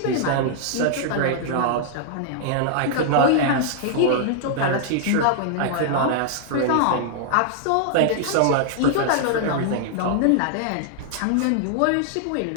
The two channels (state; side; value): different; both; correlation -0.01